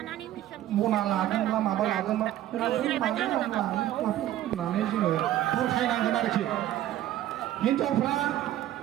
मना लादोंब्ला माबा लादोंब्ला होननानै जोङो बुरखायनांगोन आरोखि हिनजावफ्रा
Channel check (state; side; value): quieter; left; 13.1 dB